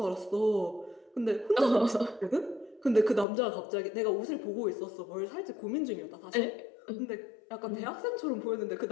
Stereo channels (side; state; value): right; drops out; at 3.2 s